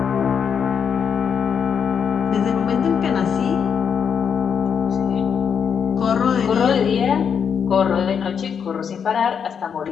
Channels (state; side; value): quieter; right; 7.2 dB